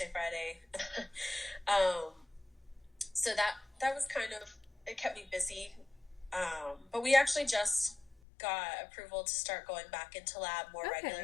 Friday. So that was kind of, it kept me busy. But we actually just got approval to start going back into lab more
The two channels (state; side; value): drops out; right; at 8.2 s